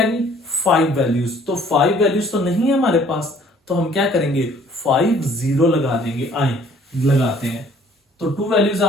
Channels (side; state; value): both; normal; correlation 0.57